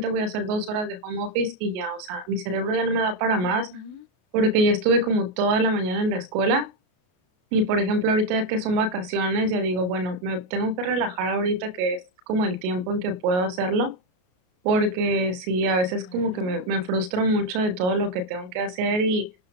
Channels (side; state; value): left; late; 33 ms